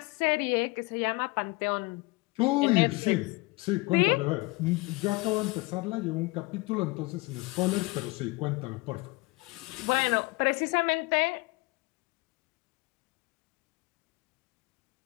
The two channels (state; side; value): quieter; right; 24.2 dB